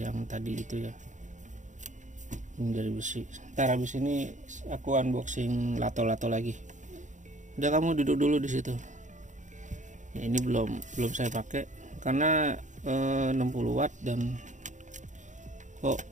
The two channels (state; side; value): late; left; 0.36 ms